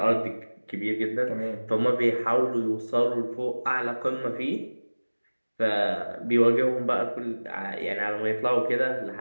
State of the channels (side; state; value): both; inverted; correlation -1.00